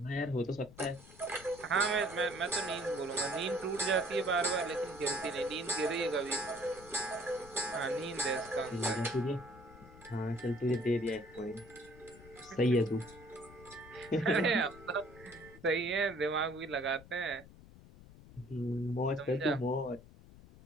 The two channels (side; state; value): left; noise; rumble, 19 dB below the sound